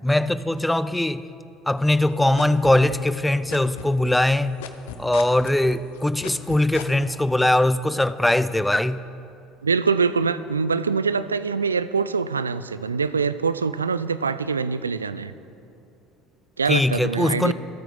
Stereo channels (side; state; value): both; normal; correlation 0.51